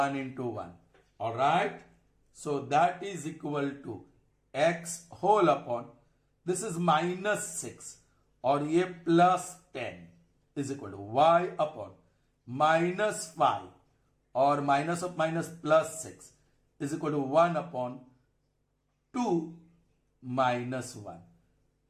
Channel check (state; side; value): identical; both; correlation 1.00